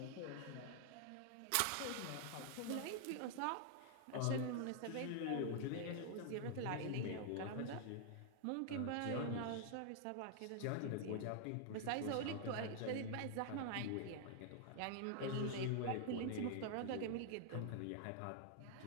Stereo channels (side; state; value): both; different; correlation 0.00